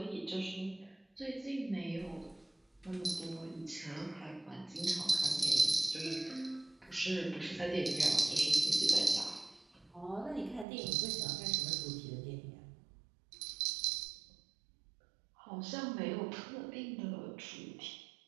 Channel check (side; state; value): left; drops out; at 10.7 s